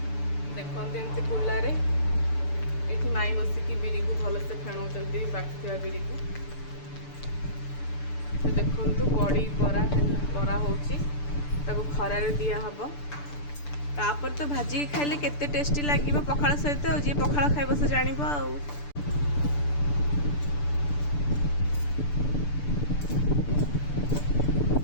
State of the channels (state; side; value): late; right; 6.8 ms